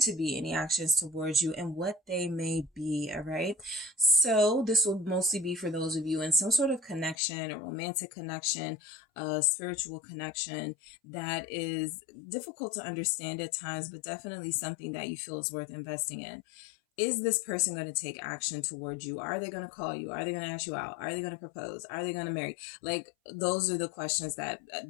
to be any actions towards you and what they may be, all right? So this will mostly be for those of you in some sort of connection, a romantic connection, a spiritual connection that is difficult to understand at times, but definitely something that you feel is worth investing in. Is this person going to take action towards you? Are they going to call you? Are they going to ask you out? Are they going to propose? Are they going to marry? Like, those are the questions that,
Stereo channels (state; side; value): drops out; right; at 7.2 s